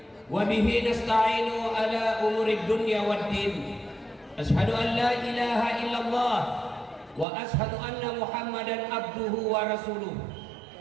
Wa bihi nasta'inu ala umurid dunya waddin. Ashhadu an la ilaha illallah wa ashhadu anna Muhammadan abduhu wa rasuluh.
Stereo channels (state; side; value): drops out; left; at 7.2 s